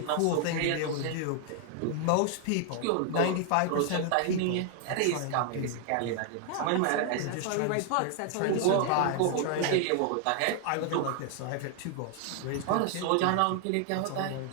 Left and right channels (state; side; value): different; both; correlation 0.00